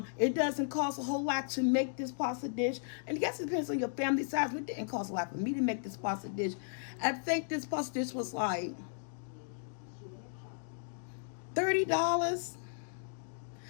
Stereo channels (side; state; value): right; silent; digital silence